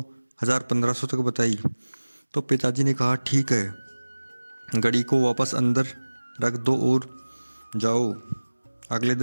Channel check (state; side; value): inverted; both; correlation -1.00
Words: 1000, 1500 तक बताई। तो पिताजी ने कहा, ठीक है, घड़ी को वापस अंदर रख दो और जाओ। अगले